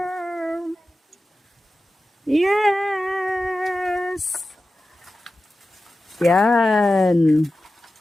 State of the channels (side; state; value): both; normal; correlation 0.94